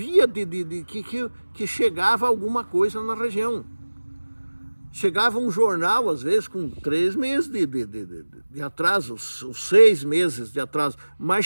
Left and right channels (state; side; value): inverted; both; correlation -1.00